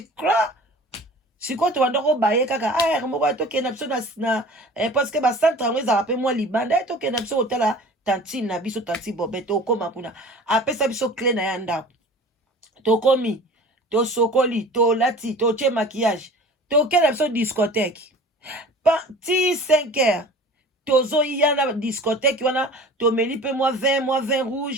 cra sikoyo tobanda kobaye kaka moko tokende na biso na parce que bacentre yango ezalaka mpe mwa libanda tokende na biso kotala tantine na biso tanti Bobe tokoma kuna apesa biso clé na ya ndako tokomi tosokoli tolati totie maquillage tokende na biso discothèque ti 5 heures tozoya na discothèque wana tomeli mpe mwa vin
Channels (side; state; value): both; normal; correlation 0.42